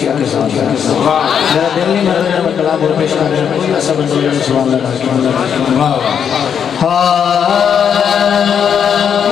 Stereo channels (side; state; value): right; quieter; 7.8 dB